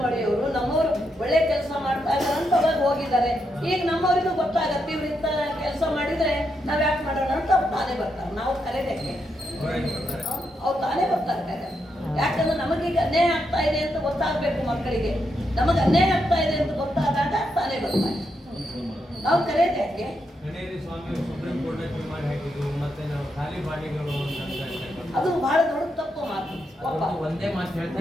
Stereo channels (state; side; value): normal; both; correlation 0.82